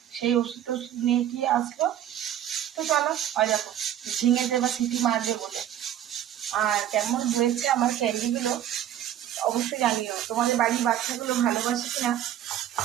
সেই ওষুধ টষুধ নিয়ে গিয়ে আসলো। তো চলো, হয় দেখো ঝিঙেতে বা সিটি মারবে বলে। আর কেমন হয়েছে আমার ক্যান্ডিগুলো অবশ্যই জানিও, তোমাদের বাড়ির বাচ্চাগুলো ভালোবাসে কিনা।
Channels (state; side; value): quieter; left; 11.3 dB